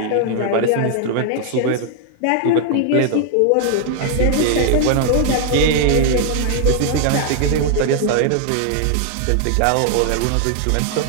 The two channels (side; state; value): both; different; correlation 0.00